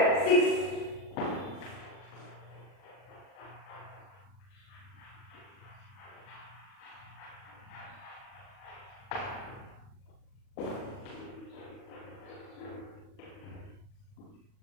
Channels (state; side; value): late; right; 40 ms